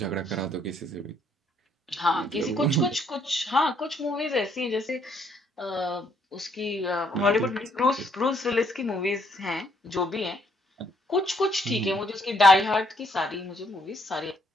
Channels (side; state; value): both; normal; correlation 0.69